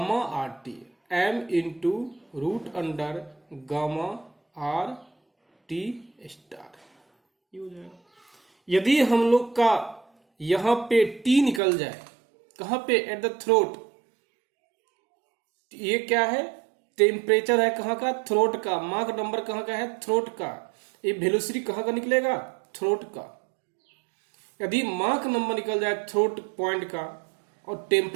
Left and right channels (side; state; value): left; drops out; at 11.6 s